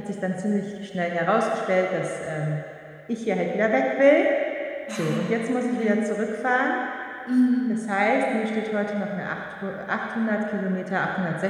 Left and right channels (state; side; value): identical; both; correlation 1.00